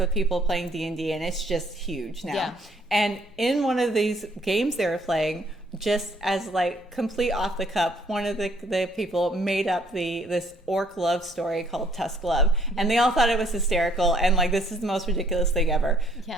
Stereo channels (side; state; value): both; normal; correlation 0.64